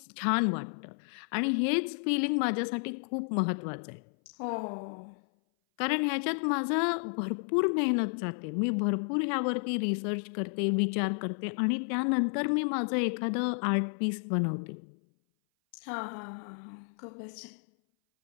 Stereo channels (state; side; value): silent; right; 57 dB below the other